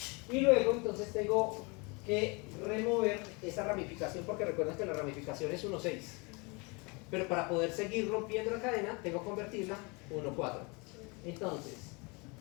Y luego entonces tengo que remover esa ramificación, porque recuerden que la ramificación es 1,6. Pero para poder seguir rompiendo la cadena, tengo que convertirla 1,4. Entonces,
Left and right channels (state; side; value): quieter; right; 29.6 dB